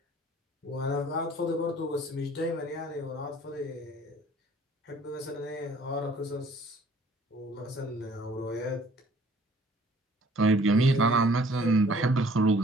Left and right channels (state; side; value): normal; both; correlation 0.55